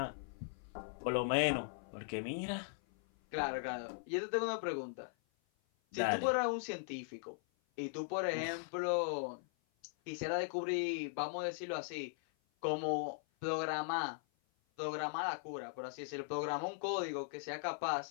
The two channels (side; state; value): right; silent; 52 dB below the other